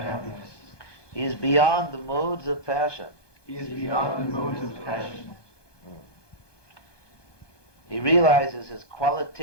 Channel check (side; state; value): right; late; 1.2 ms